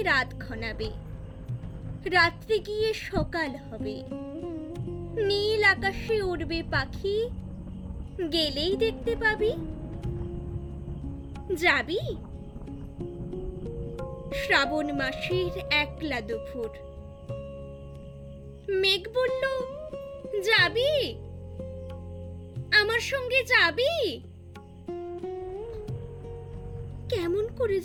রাত ঘনাবে, রাত্রে গিয়ে সকাল হবে, নীল আকাশে উড়বে পাখি, গেলেই দেখতে পাবি। যাবি? শ্রাবণ মাসের একলা দুপুর। মেঘ বলল, যাবি? আমার সঙ্গে যাবি? কেমন করে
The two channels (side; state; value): both; identical; correlation 1.00